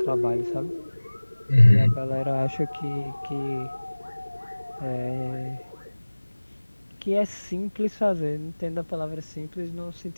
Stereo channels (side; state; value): both; inverted; correlation -1.00